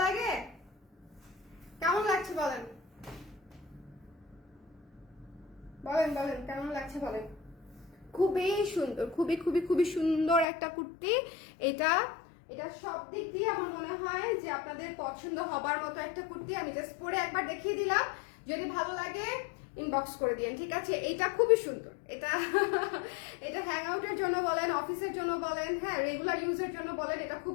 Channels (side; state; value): right; drops out; at 10.5 s